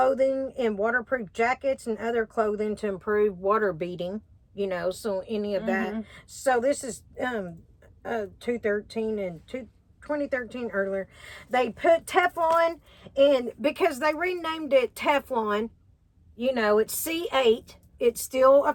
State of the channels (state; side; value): identical; both; correlation 1.00